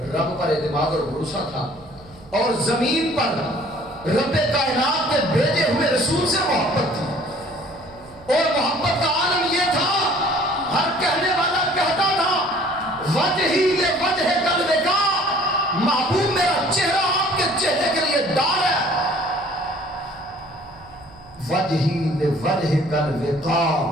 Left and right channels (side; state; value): right; noise; hum, 24 dB below the sound